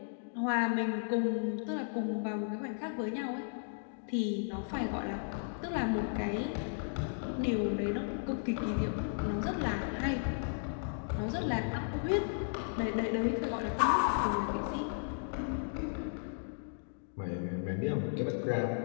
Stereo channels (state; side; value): silent; right; digital silence